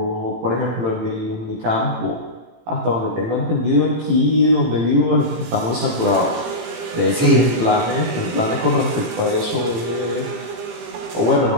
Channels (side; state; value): left; late; 18 ms